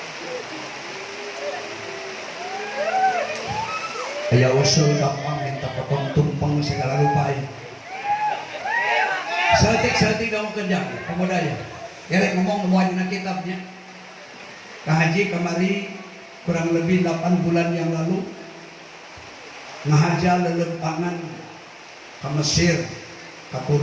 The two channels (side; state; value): both; identical; correlation 1.00